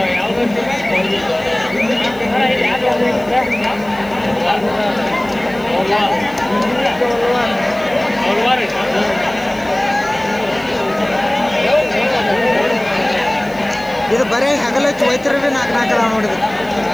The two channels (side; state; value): left; noise; hiss, 25 dB below the sound